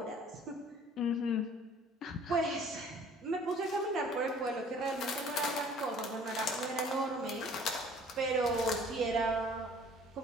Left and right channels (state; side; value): normal; both; correlation 0.52